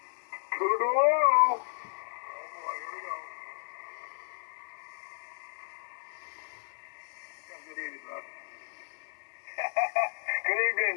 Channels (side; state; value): right; silent; digital silence